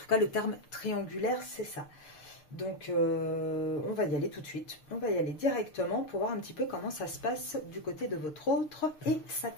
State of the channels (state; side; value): late; right; 6.6 ms